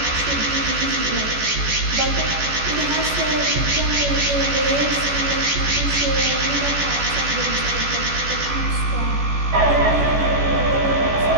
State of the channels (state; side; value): late; left; 14 ms